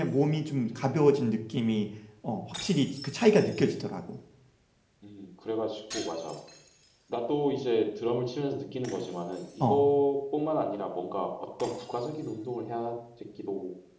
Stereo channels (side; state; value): both; identical; correlation 1.00